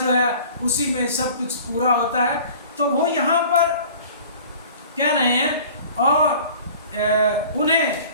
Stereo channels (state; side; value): inverted; both; correlation -0.46